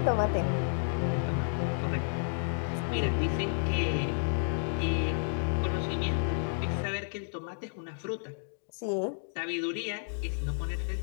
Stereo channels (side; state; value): right; silent; digital silence